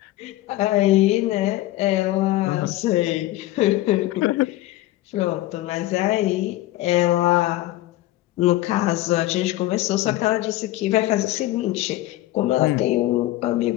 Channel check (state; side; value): quieter; right; 16.3 dB